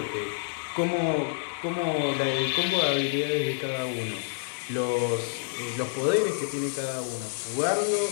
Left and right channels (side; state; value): right; silent; digital silence